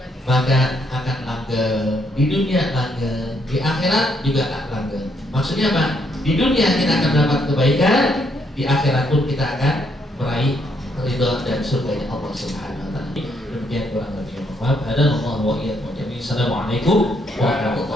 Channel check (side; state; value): both; normal; correlation 0.73